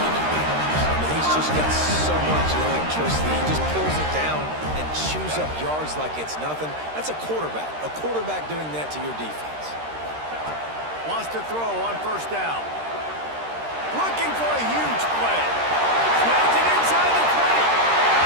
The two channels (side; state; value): left; late; 13 ms